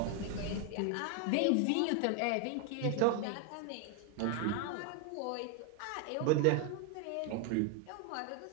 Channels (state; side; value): different; both; correlation 0.01